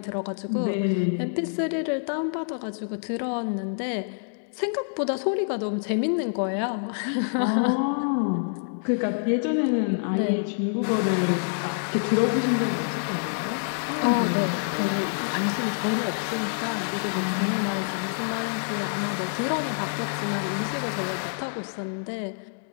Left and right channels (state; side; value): silent; right; digital silence